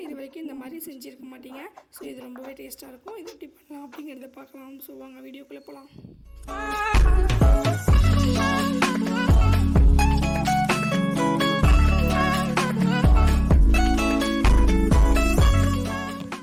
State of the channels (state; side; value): identical; both; correlation 1.00